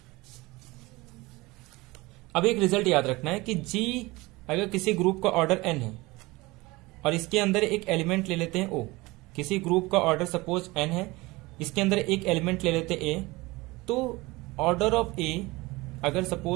अब एक रिजल्ट याद रखना है कि G अगर किसी ग्रुप का ऑर्डर n है और इसके अंदर एक एलिमेंट ले लेते हैं O, किसी ग्रुप का ऑर्डर सपोज n है, इसके अंदर एक एलिमेंट ले लेते A, तो ऑर्डर ऑफ A अगर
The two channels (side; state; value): left; quieter; 22.0 dB